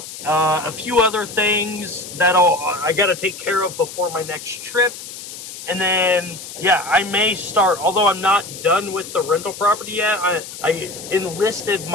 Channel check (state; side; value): noise; left; hiss, 12 dB below the sound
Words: A few other things that I got to take care of before my next trip. And then, yeah, I may start, although I'm not done with the rental property yet, I enlisted